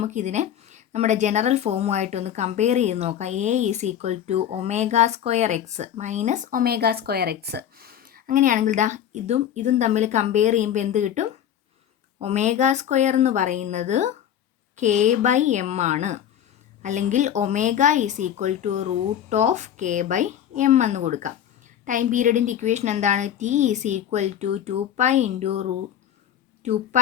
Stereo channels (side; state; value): right; quieter; 10.0 dB